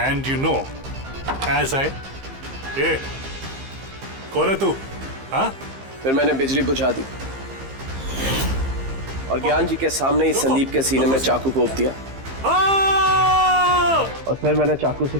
And you know, as I... ये कौन है तू? हाँ? फिर मैंने बिजली बुझा दी और ज्ञान जी के सामने ही संदीप के सीने में चाकू घोंप दिया। और फिर मैंने चाकू से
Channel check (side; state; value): left; late; 15 ms